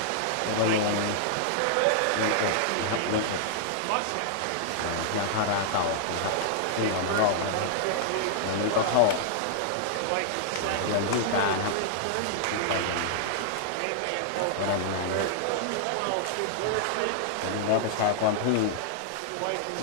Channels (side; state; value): both; different; correlation -0.01